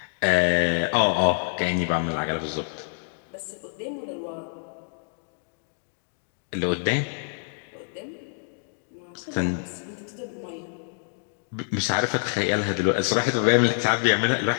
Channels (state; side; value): silent; right; digital silence